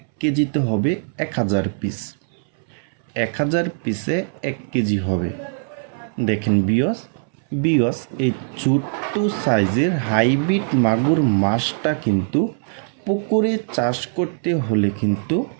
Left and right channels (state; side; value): silent; left; 63 dB below the other